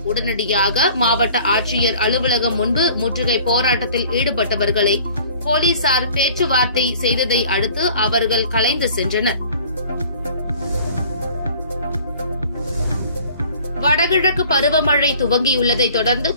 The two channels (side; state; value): both; inverted; correlation -0.50